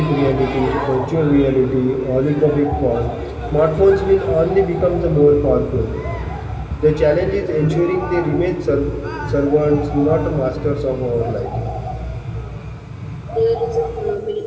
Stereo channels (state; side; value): identical; both; correlation 1.00